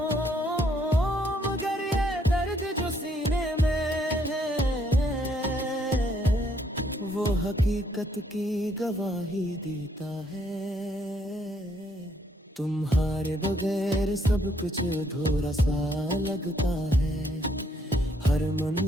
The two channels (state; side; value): normal; both; correlation 0.70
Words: मगर ये दर्द जो सीने में है वो हकीकत की गवाही देता है। तुम्हारे बगैर सब कुछ अधूरा सा लगता है, हर